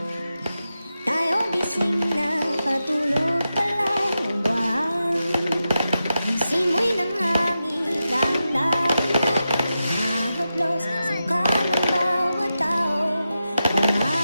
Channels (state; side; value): inverted; both; correlation -0.90